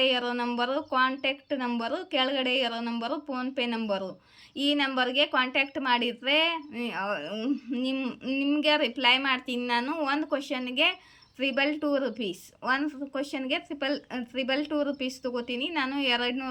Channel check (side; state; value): both; identical; correlation 1.00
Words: ಇರೋ ನಂಬರು ಕಾಂಟ್ಯಾಕ್ಟ್ ನಂಬರು, ಕೆಳಗಡೆ ಇರೋ ನಂಬರು ಫೋನ್ಪೇ ನಂಬರು. ಈ ನಂಬರ್ಗೆ ಕಾಂಟ್ಯಾಕ್ಟ್ ಮಾಡಿದರೆ ನಿಮಗೆ ರಿಪ್ಲೈ ಮಾಡ್ತೀನಿ ನಾನು. ಒಂದು ಕ್ವಶನ್ಗೆ 222 ರೂಪೀಸ್, ಒಂದು ಕ್ವಶನ್ಗೆ 222 ರೂಪೀಸ್ ತೊಗೋತೀನಿ ನಾನು.